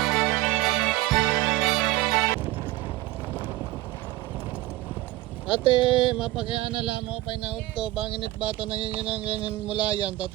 Ate, mapakiana lang mo pa inaud to. Banginit bata nanginginan mulayan,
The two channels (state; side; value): quieter; left; 17.9 dB